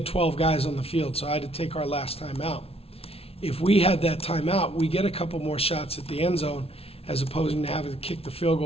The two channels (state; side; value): late; right; 0.28 ms